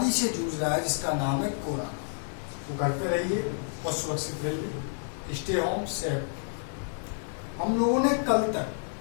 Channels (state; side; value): silent; right; digital silence